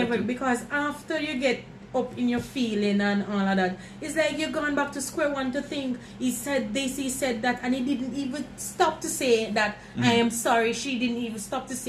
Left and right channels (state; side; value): identical; both; correlation 1.00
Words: in that view. too. Because after you get up in your feeling and all of that, it's like you're going back to square one to think he said this, he said that, and he didn't even stop to say that I am sorry. She didn't even stop to